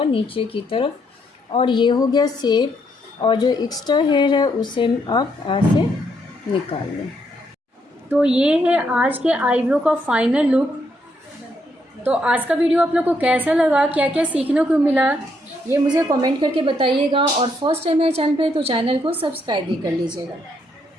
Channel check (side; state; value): both; normal; correlation 0.75